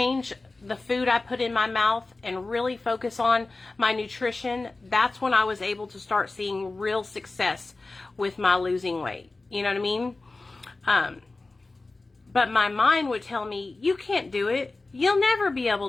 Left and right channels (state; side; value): quieter; right; 3.4 dB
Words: the food I put in my mouth and really focus on my nutrition, that's when I was able to start seeing real success with my losing weight. You know what I mean? But my mind would tell me, you can't do it. You'll never be